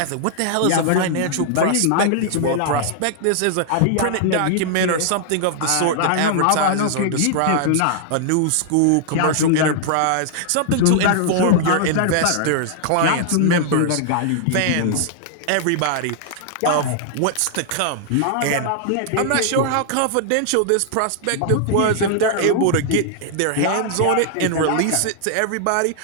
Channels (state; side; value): different; both; correlation -0.01